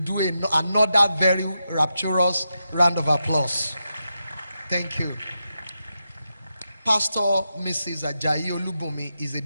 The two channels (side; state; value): both; inverted; correlation -0.87